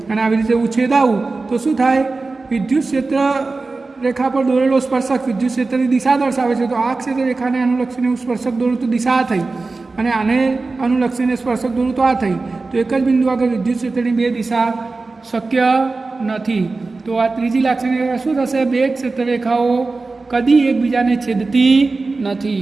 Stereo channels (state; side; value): quieter; left; 3.7 dB